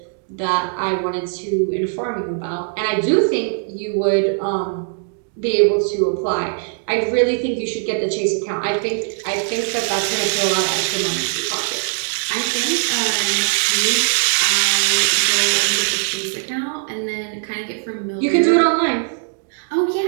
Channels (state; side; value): silent; left; digital silence